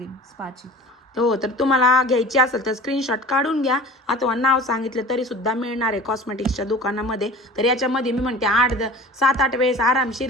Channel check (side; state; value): both; normal; correlation 0.40